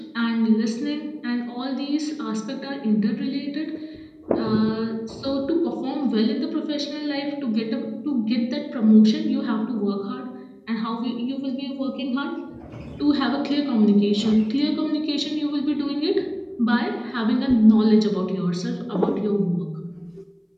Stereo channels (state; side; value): identical; both; correlation 1.00